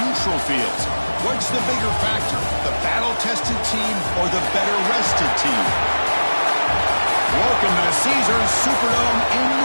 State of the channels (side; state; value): both; inverted; correlation -1.00